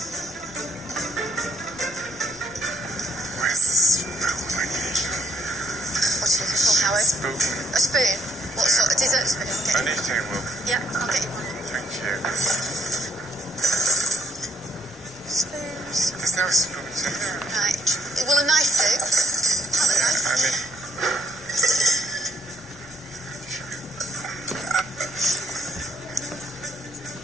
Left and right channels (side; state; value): both; normal; correlation 0.70